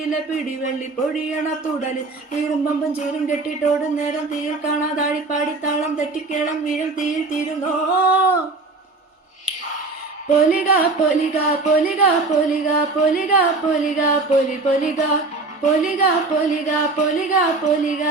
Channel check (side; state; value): left; quieter; 3.5 dB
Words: പിടിവെള്ളി പൊഴിയണ തുടല് തീരുമ്പമ്പും ചീരും കെട്ടിട്ടോടും നേരം തീയിൽ കാണാതാഴിപ്പാടിത്താളം തെറ്റിക്കേളം വീഴും തീയിൽ തീരുന്നോ. പൊലിക പൊലിക പൊലിക പൊലിക പൊലിക പൊലിക പൊലി പൊലിക പൊലിക പൊലിക പൊലിക പൊലിക